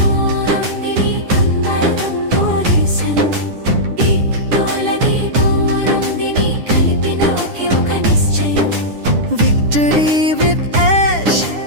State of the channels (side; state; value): left; late; 9.9 ms